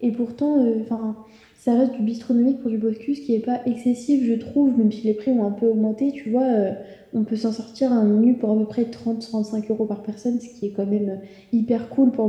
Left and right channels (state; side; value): identical; both; correlation 1.00